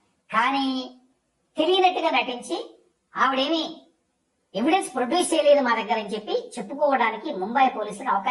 కానీ తెలియనట్టుగా నటించి ఆవిడేమి ఎవిడెన్స్ ప్రొడ్యూస్ చేయలేదు మా దగ్గర అని చెప్పి చెప్పుకోవడానికి ముంబై పోలీసులకు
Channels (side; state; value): both; identical; correlation 1.00